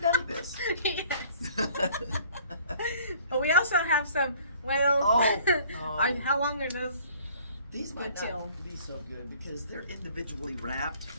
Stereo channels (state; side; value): inverted; both; correlation -0.55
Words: none of this. Yes. But we also have some, Oh. how long are those? These might Good till. not be so good because they're individually wrapped,